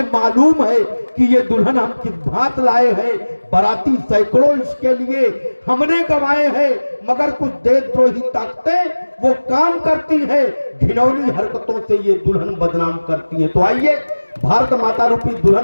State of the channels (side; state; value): both; inverted; correlation -1.00